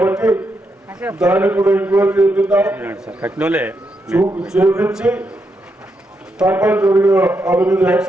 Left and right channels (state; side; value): normal; both; correlation 0.82